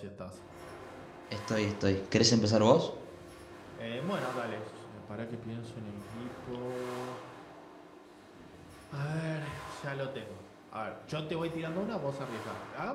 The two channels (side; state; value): both; identical; correlation 1.00